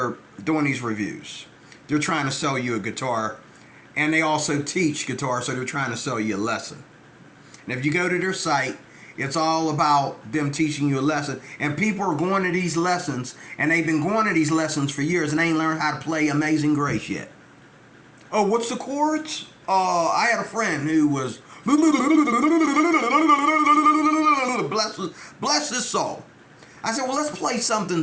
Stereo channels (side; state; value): both; identical; correlation 1.00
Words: doing these reviews. They're trying to sell you a guitar, and they also teach guitar, so they're trying to sell you a lesson. And if you go to their site, it's all about them teaching you a lesson. And people are going to these lessons, and they've been going to these lessons for years, and they ain't learned how to play Amazing Grace yet. Oh, what's the chords? I had a friend who was bless his soul. I said, well, let's play something